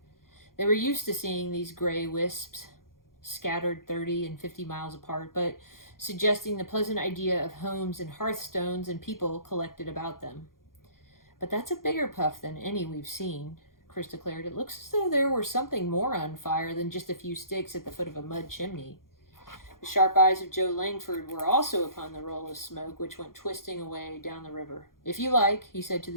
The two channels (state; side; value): late; right; 0.91 ms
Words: They were used to seeing these gray wisps scattered 30 and 50 miles apart, but suggesting the pleasant idea of homes and hearthstones and people collected about them. "But that's a bigger puff than any we've seen," Chris declared. "It looks as though there were something more on fire than just a few sticks at the foot of a mud chimney." The sharp eyes of Joe Langford were also upon the roll of smoke which went twisting away down the river. "If you like," he said to